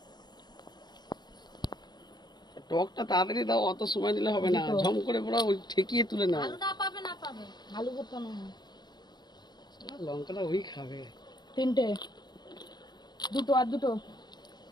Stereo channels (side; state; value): right; late; 0.21 ms